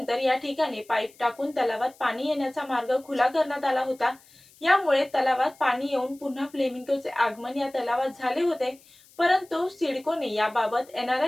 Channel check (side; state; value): left; noise; hiss, 27 dB below the sound